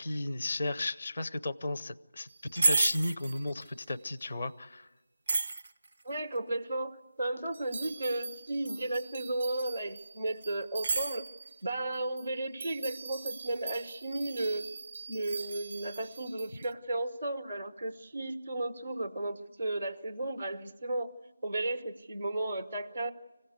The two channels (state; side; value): inverted; both; correlation -0.89